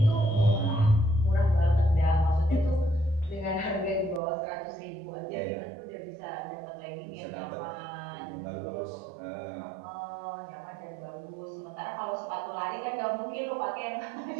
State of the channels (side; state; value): left; drops out; at 4.2 s